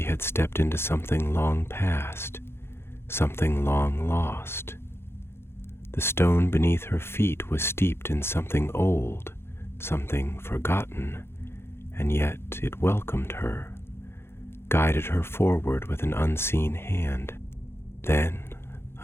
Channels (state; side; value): late; right; 0.12 ms